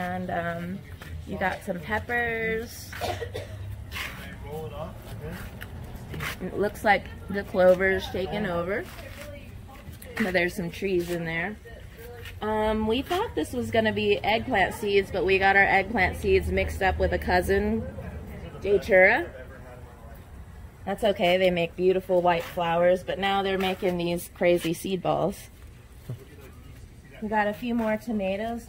you got some peppers. It looks like the clover's taken over. But there's some trees in there. We thought this was going to be eggplant seeds, but we got our eggplant seeds mixed up with a cousin, Datura. That's okay, they make beautiful white flowers, but now they're making these crazy seed balls. We got a few more tomatoes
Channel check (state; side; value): identical; both; correlation 1.00